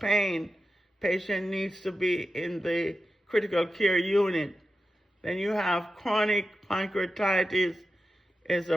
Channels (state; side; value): normal; both; correlation 0.91